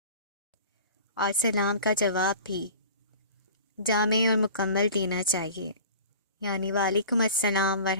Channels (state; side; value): inverted; both; correlation -0.41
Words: اور سلام کا جواب بھی جامع اور مکمل دینا چاہیے، یعنی وعلیکم السلام